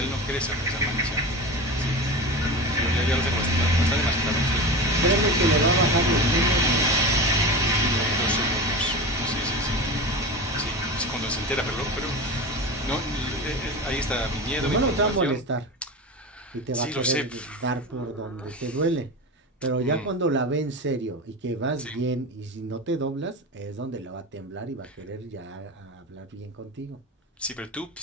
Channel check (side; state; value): both; normal; correlation 0.28